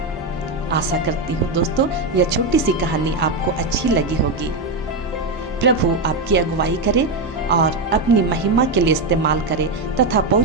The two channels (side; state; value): left; quieter; 3.1 dB